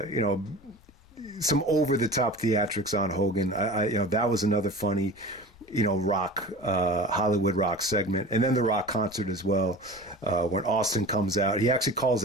some over the top theatrics on Hogan. That was another funny Rock Hollywood Rock segment. And then the Rock concert as well. When Austin comes out, he actually calls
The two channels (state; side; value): noise; left; rumble, 26 dB below the sound